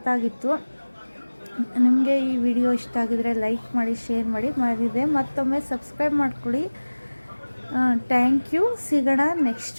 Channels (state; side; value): inverted; both; correlation -1.00